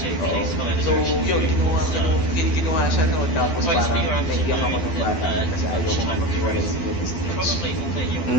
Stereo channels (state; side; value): late; right; 12 ms